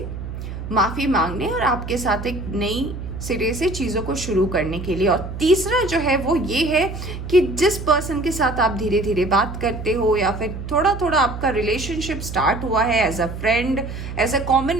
माफ़ी मांगने और आपके साथ एक नई सिरे से चीज़ों को शुरू करने के लिए। और तीसरा जो है वो ये है कि जिस पर्सन के साथ आप धीरे धीरे बात करते हो या फिर थोड़ा थोड़ा आपका रिलेशनशिप स्टार्ट हुआ है as a friend, as a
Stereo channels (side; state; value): right; noise; hum, 8 dB below the sound